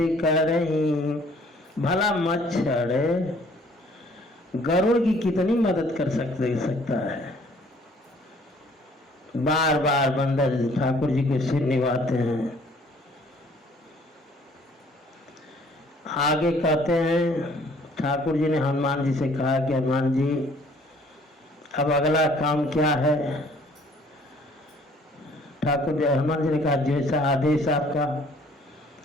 करही। भला मच्छर गरुड़ की कितनी मदद कर सकता है। बार बार बंदर ठाकुर जी को सिर निभाते हैं। आगे कहते हैं ठाकुर जी ने हनुमान जी से कहा कि हनुमान जी अब अगला काम क्या है। हनुमान जी ने कहा जैसा आदेश आपका।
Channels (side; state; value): both; normal; correlation 0.58